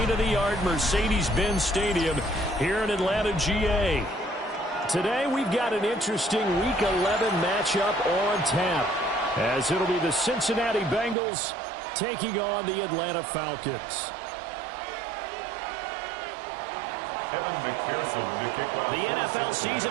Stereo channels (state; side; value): drops out; left; at 11.2 s